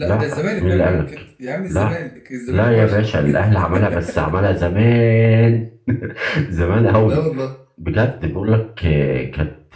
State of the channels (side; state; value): both; identical; correlation 1.00